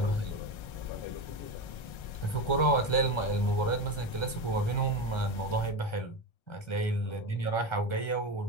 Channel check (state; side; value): late; right; 1.3 ms